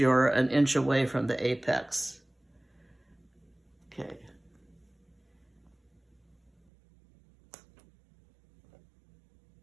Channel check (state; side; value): drops out; left; at 6.5 s